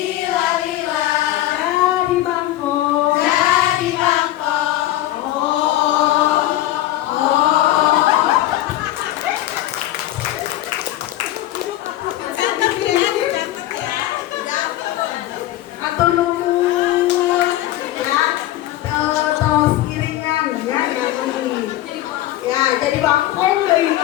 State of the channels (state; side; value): quieter; right; 14.8 dB